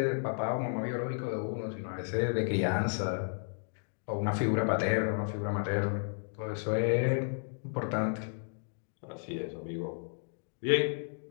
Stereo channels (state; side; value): silent; right; digital silence